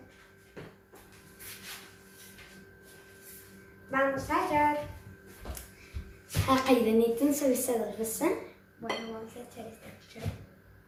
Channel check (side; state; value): both; identical; correlation 1.00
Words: Vamos a echar. هاقي دانيتنا نسوي السن في السن. Bueno, vamos a echar esta cuchara.